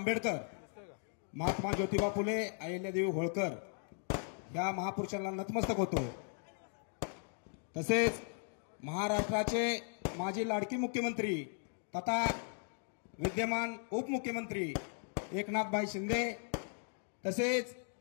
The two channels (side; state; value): right; silent; 53 dB below the other